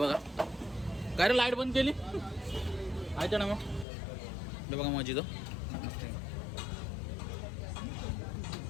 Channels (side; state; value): right; drops out; at 3.9 s